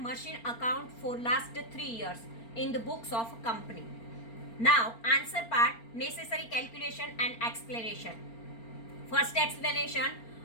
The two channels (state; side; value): late; right; 4.4 ms